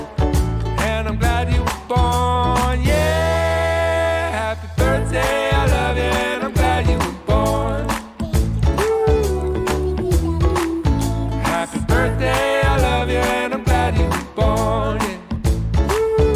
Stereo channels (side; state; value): both; identical; correlation 1.00